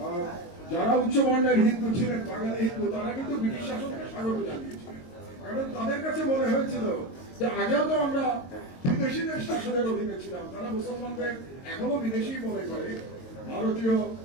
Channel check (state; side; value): late; right; 22 ms